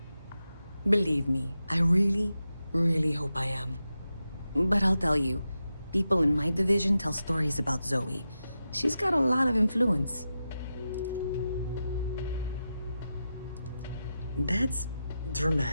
Believe me, I really, really hope I am. But I'll tell you, people in my division tell stories about Zoe. She's got a lot of influence. That's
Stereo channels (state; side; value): inverted; both; correlation -0.90